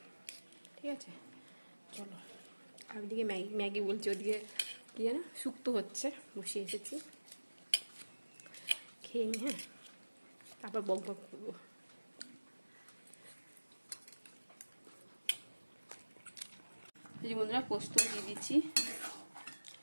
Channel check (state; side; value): inverted; both; correlation -1.00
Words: ঠিক আছে, চলো। আর ওদিকে ম্যাগি বলছি, ওদিকে কী জানো শুক্তো হচ্ছে, বসিয়ে এসেছি। খেয়ে নিই, হ্যাঁ, তারপর বক বক করবো। এই বন্ধুরা, পোস্ত দিয়ে দিচ্ছি।